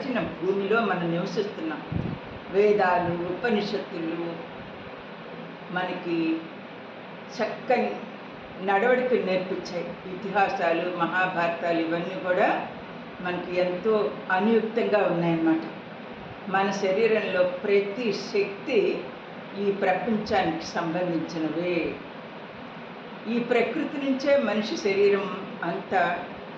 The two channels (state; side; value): identical; both; correlation 1.00